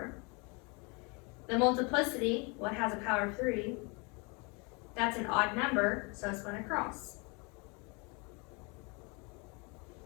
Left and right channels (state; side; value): quieter; right; 31.0 dB